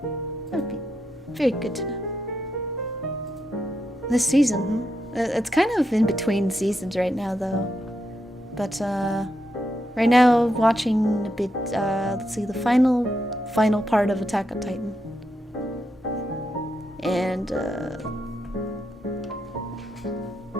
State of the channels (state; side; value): normal; both; correlation 0.83